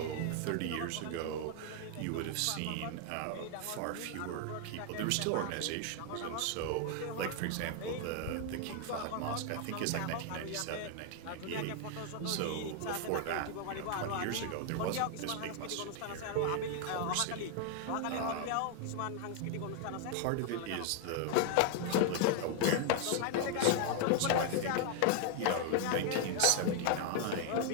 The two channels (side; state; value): both; different; correlation 0.00